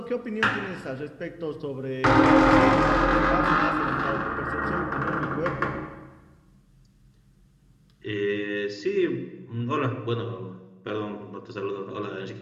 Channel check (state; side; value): identical; both; correlation 1.00